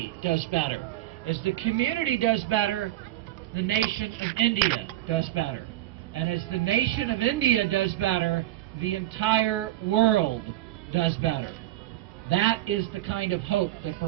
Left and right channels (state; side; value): quieter; left; 15.0 dB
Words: does better. As the community does better, the nation of India does better. And as the nation of India does better, the entire world does better. That is the kind of hope that